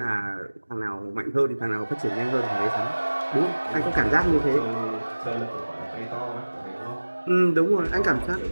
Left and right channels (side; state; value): both; inverted; correlation -1.00